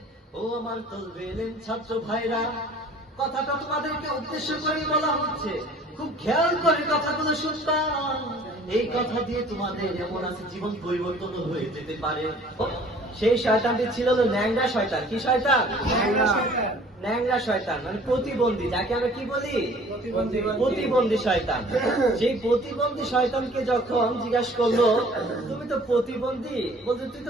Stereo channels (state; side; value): normal; both; correlation 0.51